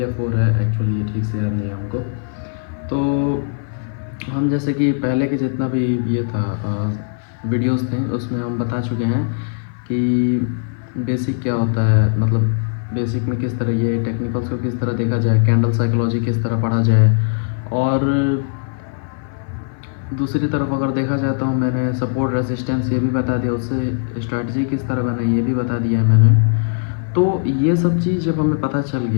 4 है, एक्चुअली ये ठीक से याद नहीं है हमको। तो हम जैसे कि पहले के जितना भी ये था वीडियोस थे उसमें हम बता चुके हैं कि बेसिक क्या होता है, मतलब बेसिक में किस तरह ये टेक्निकल्स को किस तरह देखा जाए, कैंडल साइकोलॉजी किस तरह पढ़ा जाए, और दूसरी तरफ अगर देखा जाए तो मैंने सपोर्ट रेसिस्टेंस ये भी बता दिया, उससे स्ट्रैटेजी किस तरह बनाई ये भी बता दिया है मैंने। तो ये सब चीज़ जब हमें पता चल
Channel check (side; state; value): right; silent; 56 dB below the other